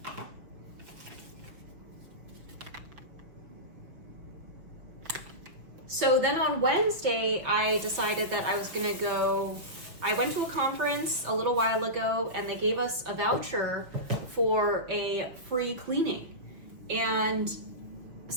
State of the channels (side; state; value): left; late; 5.8 ms